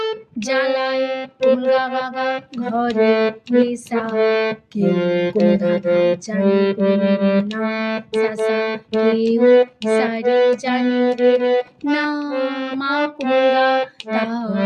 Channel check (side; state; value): both; identical; correlation 1.00